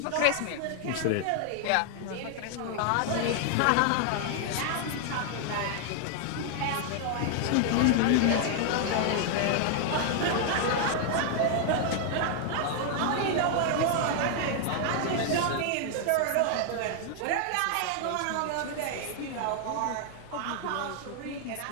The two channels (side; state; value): both; different; correlation 0.00